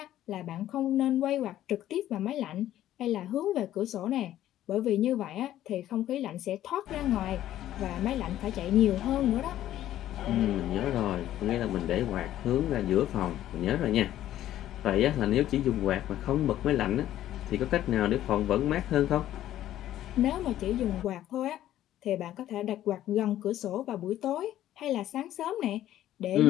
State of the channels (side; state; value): right; quieter; 12.8 dB